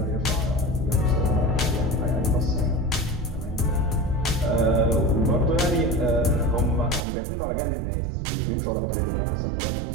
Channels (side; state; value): left; drops out; at 7.1 s